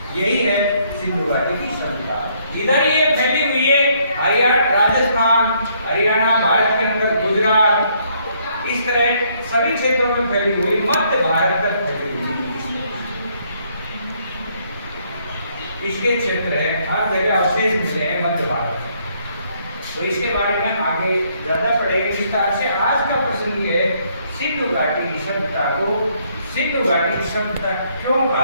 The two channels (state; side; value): inverted; both; correlation -0.69